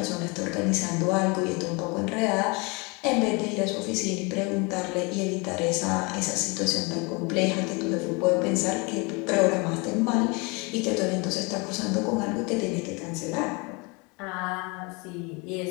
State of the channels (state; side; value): quieter; right; 29.0 dB